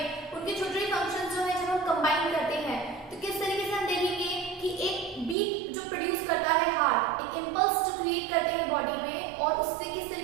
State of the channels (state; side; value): drops out; left; at 5.4 s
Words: उनके छोटे छोटे functions जो है जब हम कंबाइन करते हैं तो किस तरीके से हम देखेंगे कि एक बीट जो प्रोड्यूस करता है हार्ट, एक इम्पल्स जो क्रिएट करते हैं बॉडी में, और उससे किस